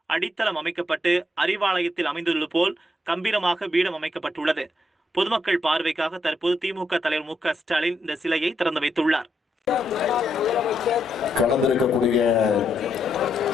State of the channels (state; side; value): normal; both; correlation 0.79